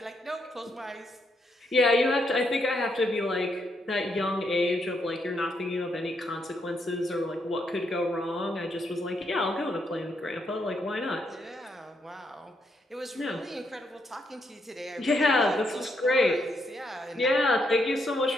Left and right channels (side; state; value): both; normal; correlation 0.77